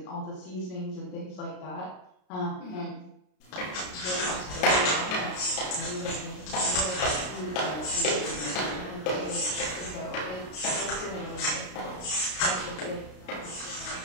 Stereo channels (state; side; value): late; right; 33 ms